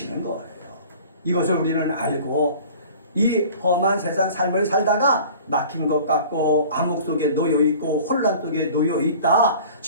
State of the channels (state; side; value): inverted; both; correlation -0.45